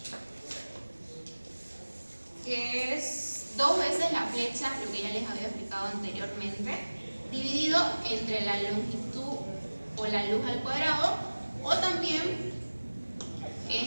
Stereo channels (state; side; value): inverted; both; correlation -1.00